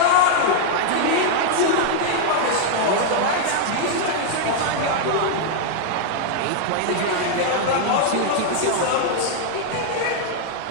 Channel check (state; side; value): different; both; correlation 0.00